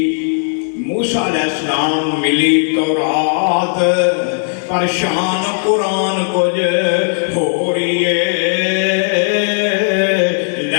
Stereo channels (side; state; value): right; silent; digital silence